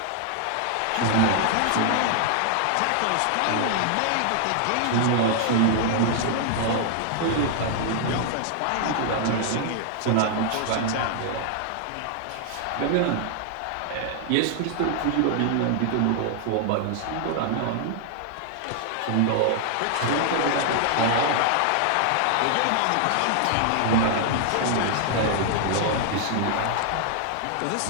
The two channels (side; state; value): both; different; correlation 0.00